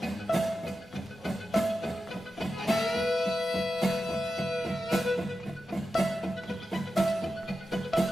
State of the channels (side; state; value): both; normal; correlation 0.91